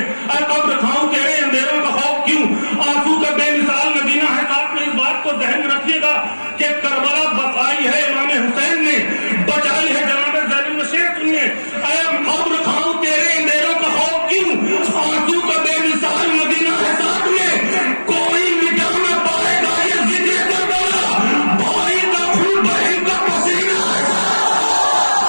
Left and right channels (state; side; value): inverted; both; correlation -1.00